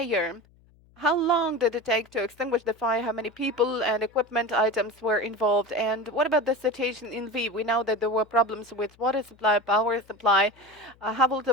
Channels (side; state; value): left; noise; hum, 30 dB below the sound